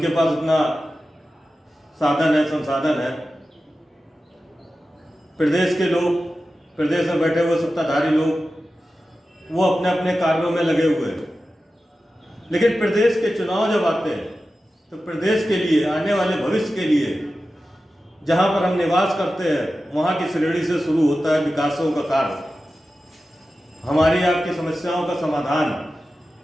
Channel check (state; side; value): normal; both; correlation 0.93